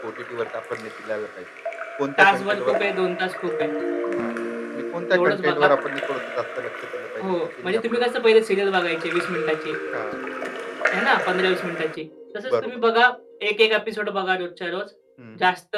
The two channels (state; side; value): identical; both; correlation 1.00